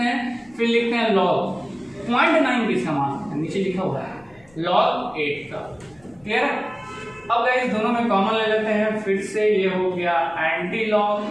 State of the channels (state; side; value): noise; left; rumble, 30 dB below the sound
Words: हैं, फिर लिखते हैं log 0.9 किसका मान, नीचे लिखा हुआ है log 8 का। क्लियर है। अब गाइस दोनों में कॉमन ले लेते हैं, फिर से ये हो गया एंटी